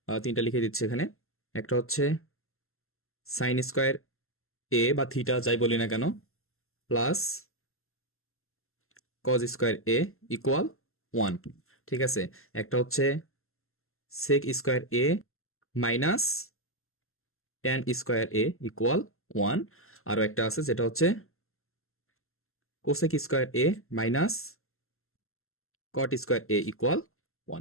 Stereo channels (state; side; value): late; right; 0.62 ms